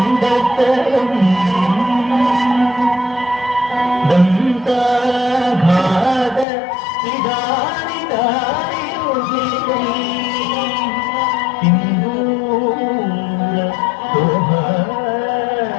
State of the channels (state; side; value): drops out; right; at 6.5 s